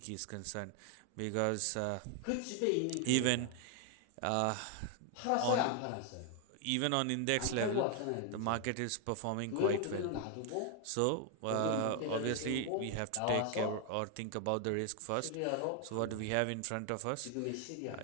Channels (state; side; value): different; both; correlation 0.00